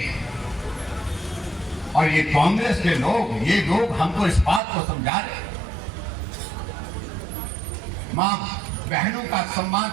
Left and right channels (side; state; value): left; drops out; at 4.6 s